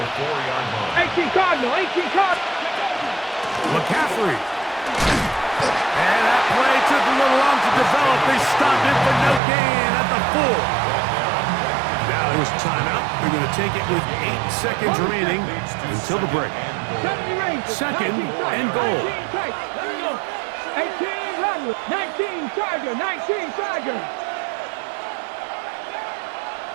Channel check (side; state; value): left; drops out; at 9.4 s